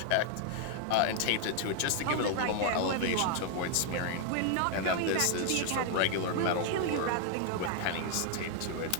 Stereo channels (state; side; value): different; both; correlation 0.00